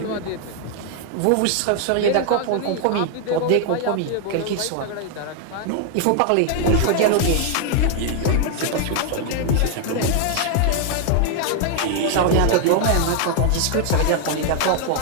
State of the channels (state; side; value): different; both; correlation 0.00